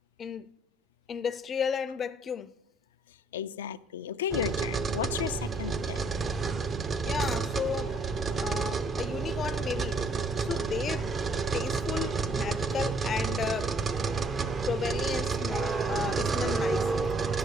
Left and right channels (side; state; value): both; normal; correlation 0.64